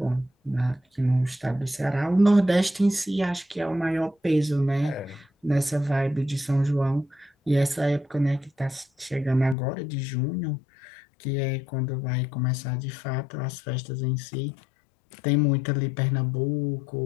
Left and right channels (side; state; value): right; drops out; at 9.6 s